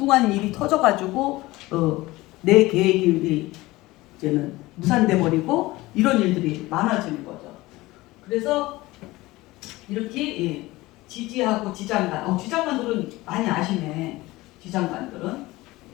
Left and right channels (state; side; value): quieter; right; 19.5 dB